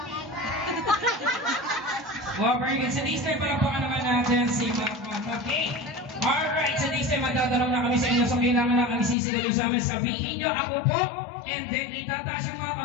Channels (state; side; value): drops out; right; at 9.2 s